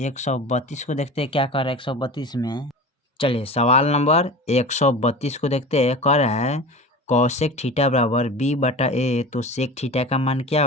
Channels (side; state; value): both; normal; correlation 0.34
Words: को देखते हैं क्या कर रहा है 132 में। चलिए सवाल नंबर 132 को देखते हैं, कह रहा है कौसेक थीटा बराबर बी बटा ए, तो सेक थीटा का मान क्या